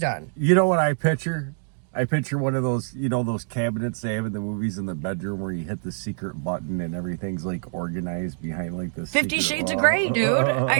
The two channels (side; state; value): left; silent; digital silence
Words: on? You know what I picture? I picture one of those, you know, those cabinets they have in the movies in the bedroom where you hit the secret button and everything's like organized behind like this. 50 Shades of Grey, dude.